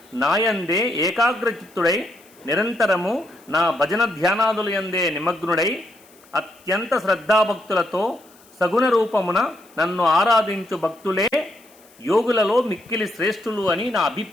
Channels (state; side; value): noise; left; hiss, 28 dB below the sound